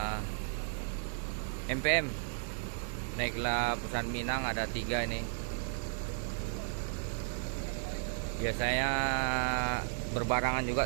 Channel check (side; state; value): left; silent; 55 dB below the other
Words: MPM naiklah Perusahaan Minang, ada 3 ini. Biasanya berbarangan juga